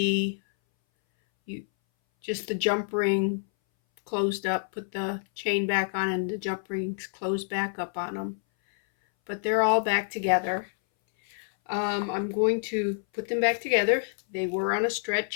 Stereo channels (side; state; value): right; silent; 60 dB below the other